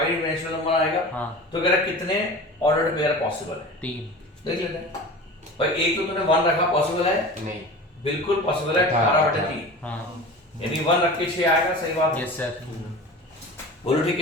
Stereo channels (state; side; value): normal; both; correlation 0.35